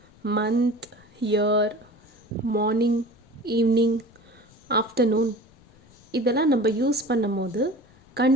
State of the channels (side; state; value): left; noise; rumble, 29 dB below the sound